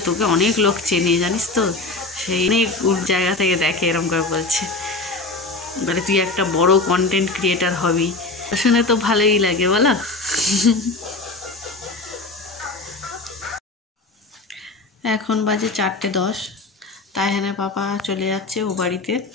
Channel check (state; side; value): quieter; right; 3.3 dB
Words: তোকে অনেক লোক চেনে জানিস তো, সেই অনেক জায়গা থেকে দেখে, এরকম করে বলছে, বলে তুই একটা বড় কন্টেন্ট ক্রিয়েটার হবি। শুনে তো ভালোই লাগে বলো। এখন বাজে 4:10, তাইহানের পাপা চলে যাচ্ছে ও বাড়িতে।